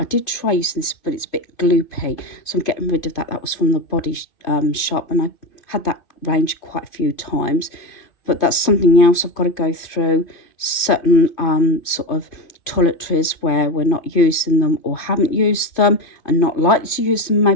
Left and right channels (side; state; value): right; late; 2.5 ms